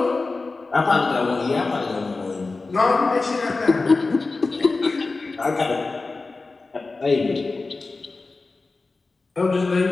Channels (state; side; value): quieter; right; 3.7 dB